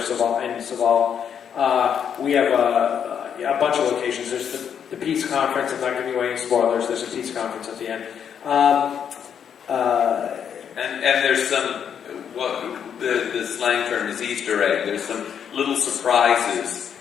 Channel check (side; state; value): right; quieter; 8.1 dB